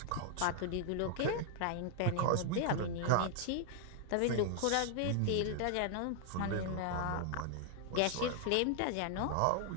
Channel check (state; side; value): different; both; correlation 0.00